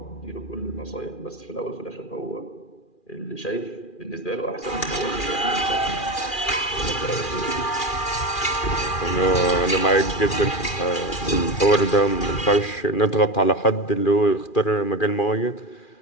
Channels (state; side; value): late; right; 2.4 ms